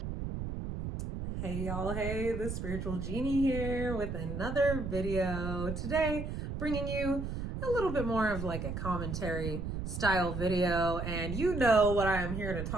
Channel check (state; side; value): noise; right; rumble, 4 dB below the sound